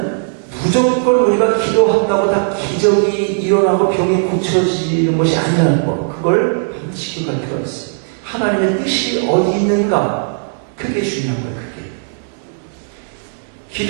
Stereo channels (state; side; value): silent; left; digital silence